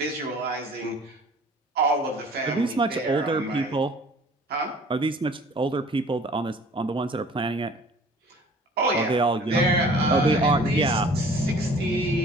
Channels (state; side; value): normal; both; correlation 0.50